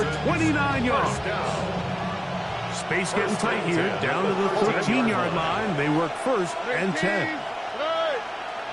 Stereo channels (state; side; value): identical; both; correlation 1.00